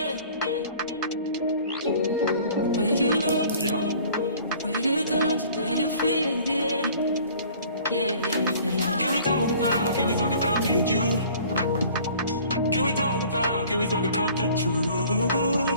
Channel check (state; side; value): inverted; both; correlation -0.50